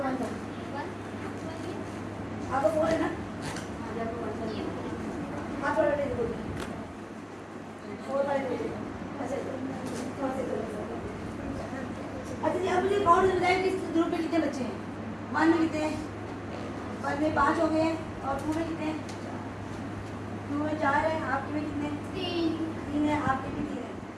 आपको 4 है ना, आप थोड़ा बैठे देखो, 4 वाले बैठे। अच्छा जी, अब मुझे काउंट बताएं कि इस ग्रुप में कितने बच्चे हैं। 1 में कितने हैं, 1 में 5 हो गए हैं, और 2 में कितने हैं, 2 में 4 है, आपके में कितने, 3 है, आपके भी 3 है।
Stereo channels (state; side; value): identical; both; correlation 1.00